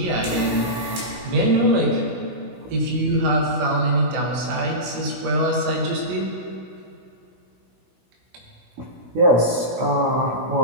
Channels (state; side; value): late; left; 16 ms